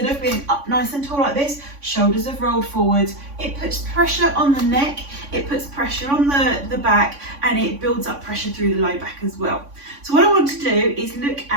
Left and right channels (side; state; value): left; late; 3.5 ms